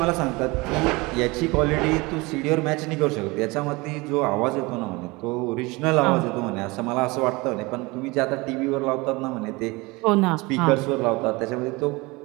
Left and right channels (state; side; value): quieter; left; 24.1 dB